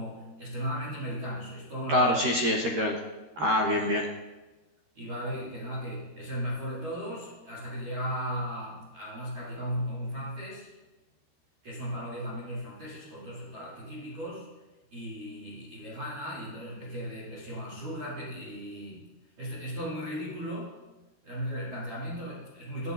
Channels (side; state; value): left; late; 13 ms